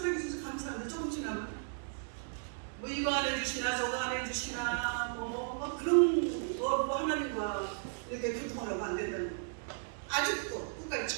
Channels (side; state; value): left; silent; digital silence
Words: 감사합니다. 조금 지나면 뭐 이거 안 해주시나 저거 안 해주시나 뭐 그런 거 하나님과 이렇게 교통하라고 안 된다는 거. 아직도 끝까지